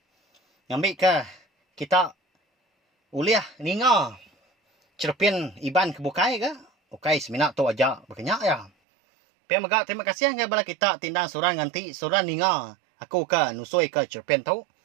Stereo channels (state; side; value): drops out; left; at 8.7 s